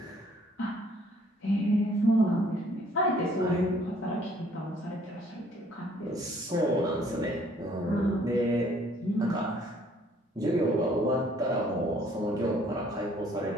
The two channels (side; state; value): both; normal; correlation 0.61